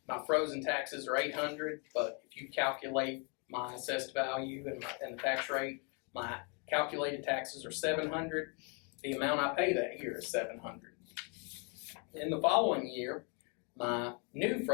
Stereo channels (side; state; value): right; quieter; 35.6 dB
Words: My frozen taxes are $800, but if you calculate my assessed value and the tax rate, my calculated taxes are $700. The amount I pay that year is $700. In the following year, my new